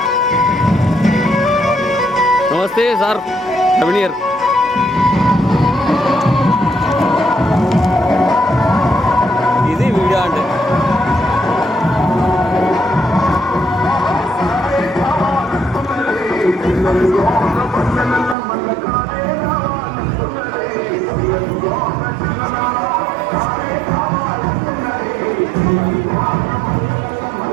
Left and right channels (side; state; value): left; drops out; at 18.4 s